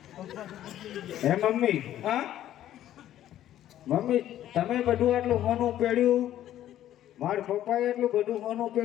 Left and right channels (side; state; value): right; quieter; 12.3 dB